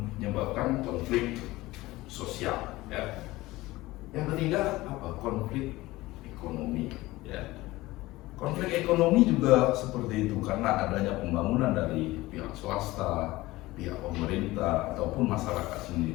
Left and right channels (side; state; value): right; quieter; 18.9 dB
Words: konflik sosial, ya. Yang ketiga apa? Konflik ekonomi, ya. Konflik ekonomi juga seperti itu karena adanya pembangunan dari pihak swasta, pihak pemerintah ataupun masyarakat